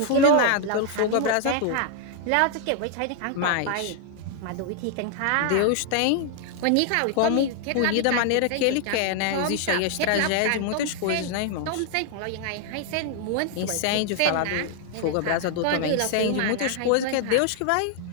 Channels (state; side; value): different; both; correlation 0.00